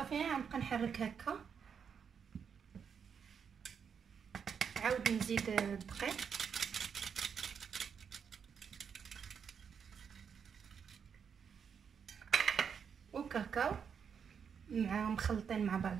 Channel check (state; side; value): quieter; left; 7.0 dB